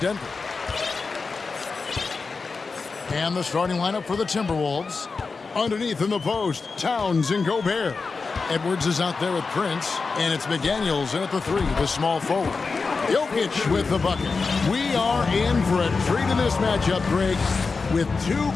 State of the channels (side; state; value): right; quieter; 4.4 dB